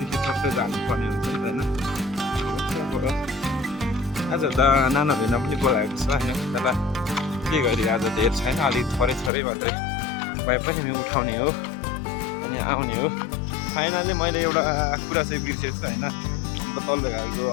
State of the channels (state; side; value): drops out; right; at 9.3 s